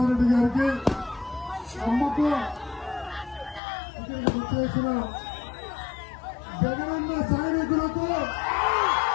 రెడ్డి గారికి, అమ్మకు, ఇక్కడికి వచ్చేసిన జగనన్న సైనికులకు,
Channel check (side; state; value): right; drops out; at 3.6 s